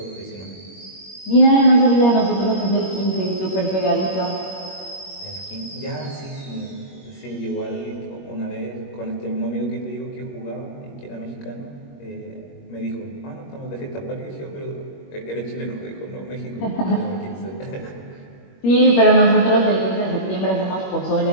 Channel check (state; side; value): late; right; 21 ms